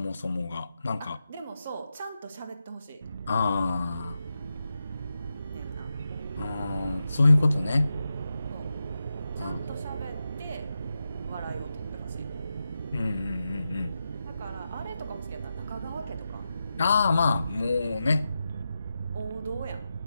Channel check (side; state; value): both; inverted; correlation -0.89